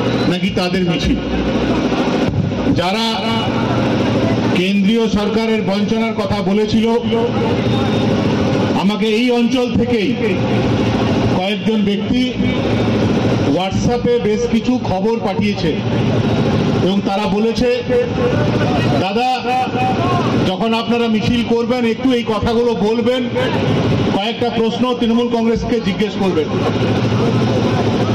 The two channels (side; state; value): both; identical; correlation 1.00